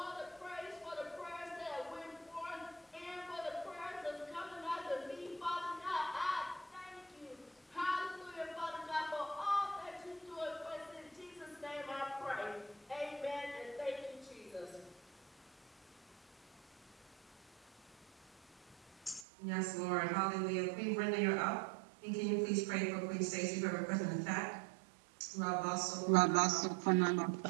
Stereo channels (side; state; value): left; drops out; at 19.2 s